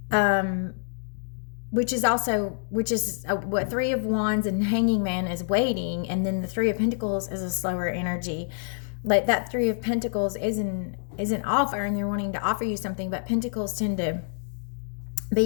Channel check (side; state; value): right; silent; digital silence